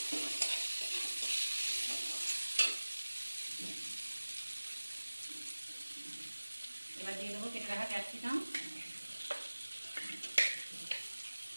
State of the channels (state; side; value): inverted; both; correlation -1.00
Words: এবার দিয়ে দেবো কেটে রাখা ক্যাপসিকাম,